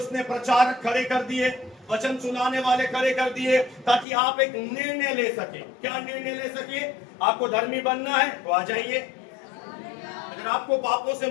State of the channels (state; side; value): drops out; right; at 4.0 s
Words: प्रचारक खड़े कर दिए, वचन सुनाने वाले खड़े कर दिए, ताकि आप एक निर्णय ले सके। क्या निर्णय ले सके? आपको धर्मी बनना है तो आ जाइए। अगर आपको पापों से